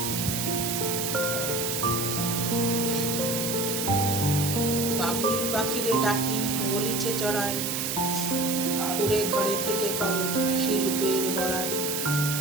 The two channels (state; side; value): noise; right; hiss, 1 dB below the sound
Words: বাবুই পাখিরে ডাকি বলিছে চড়াই, কুড়ে ঘরে থেকে করো শিল্পের বড়াই।